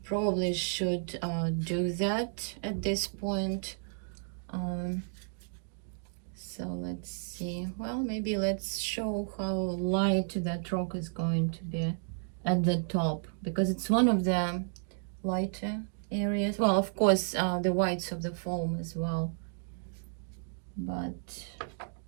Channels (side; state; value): left; silent; digital silence